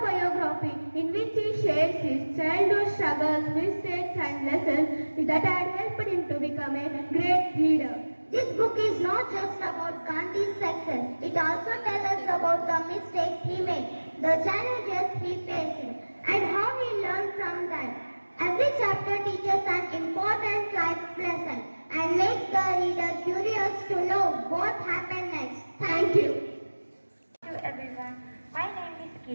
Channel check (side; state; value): both; inverted; correlation -1.00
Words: in which he shares his childhood struggles, mistakes and lessons that had helped him to become a great leader. This book is not just about Gandhi's success. It also tells us about the mistakes he made, the challenges he faced, and how he learned from them. Every chapter teaches an important life lesson and makes the reader curious to know what happened next. Thank you. Hello everyone, my name is